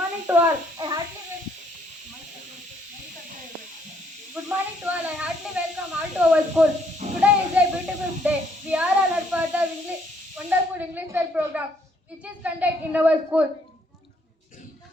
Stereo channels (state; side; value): normal; both; correlation 0.68